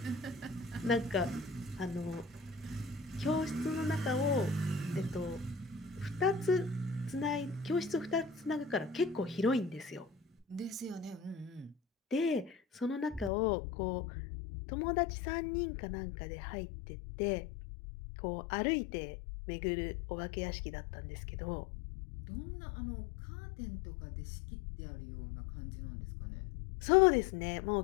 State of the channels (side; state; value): right; drops out; at 13.3 s